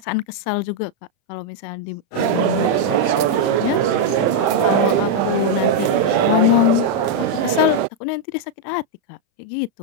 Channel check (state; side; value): late; right; 35 ms